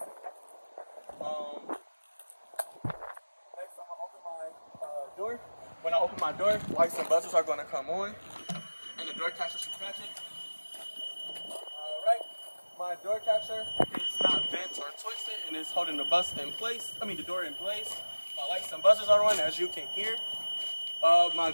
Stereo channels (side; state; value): both; inverted; correlation -1.00